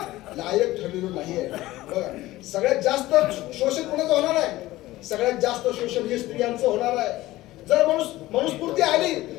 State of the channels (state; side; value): quieter; right; 17.2 dB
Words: लायक ठरलेलो नाहीये. बघा, सगळ्यात जास्त शोषण कोणाचं होणार आहे? सगळ्यात जास्त शोषण हे स्त्रियांचं होणार आहे. जर मनुस्फूर्ती आली,